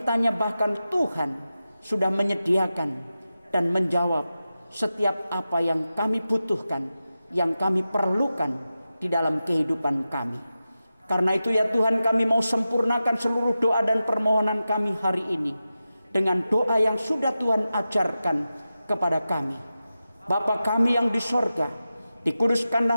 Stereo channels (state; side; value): inverted; both; correlation -0.92